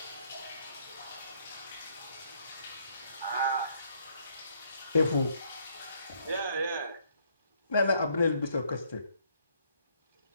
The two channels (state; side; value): inverted; both; correlation -0.67